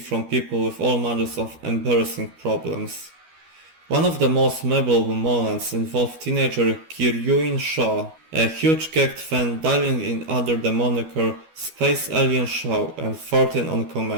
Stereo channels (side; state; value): left; late; 12 ms